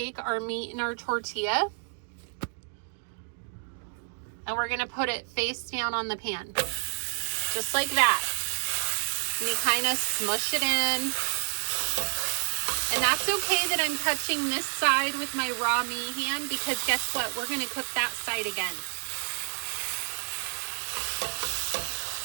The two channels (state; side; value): silent; left; digital silence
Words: our meat in our tortilla and we're gonna put it face down on the pan. Just like that. And you kind of smush it in. And that's okay that I'm touching this side with my raw meat hand because guess what? We're gonna cook that side again.